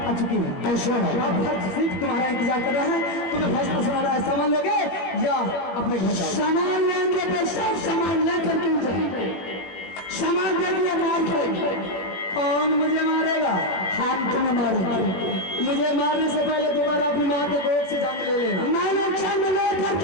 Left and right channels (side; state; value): right; late; 21 ms